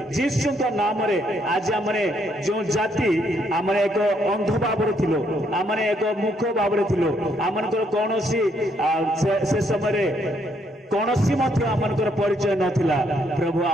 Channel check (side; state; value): both; normal; correlation 0.72